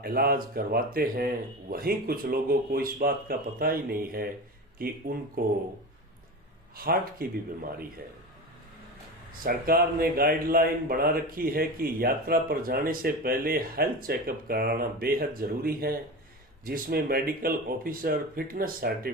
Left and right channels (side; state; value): both; normal; correlation 0.27